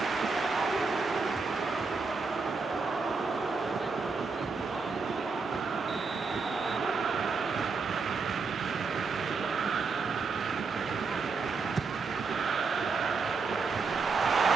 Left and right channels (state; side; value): quieter; left; 4.6 dB